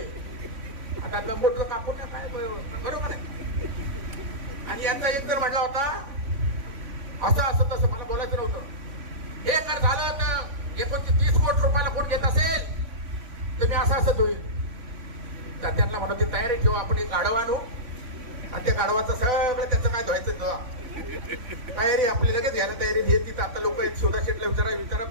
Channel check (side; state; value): left; late; 3.5 ms